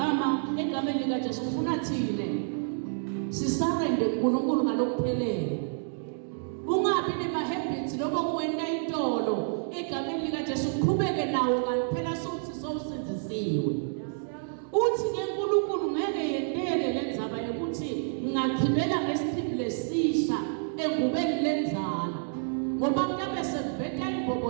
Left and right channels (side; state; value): left; silent; digital silence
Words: egameni lika Jesu ufuna thine sisarende kuNkulunkulu ngalokuphelele. Ungabi nema-habits loba kuwena intolo egameni lika Jesu uqhubeke nawo kanti phela sokuthi sowusenzisiwe. Uthi ke uNkulunkulu ngeke yendele lenzaba yokuthi ngachibela ngesichibile lesisha engubeni lenza